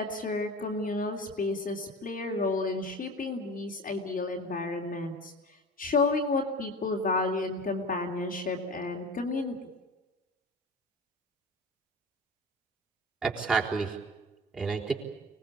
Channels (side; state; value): both; normal; correlation 0.34